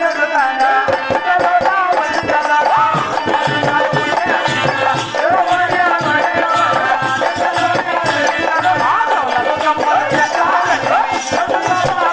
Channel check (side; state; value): both; identical; correlation 1.00